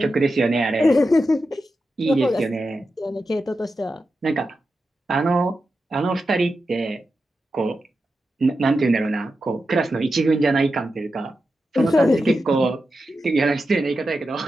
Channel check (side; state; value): both; normal; correlation 0.90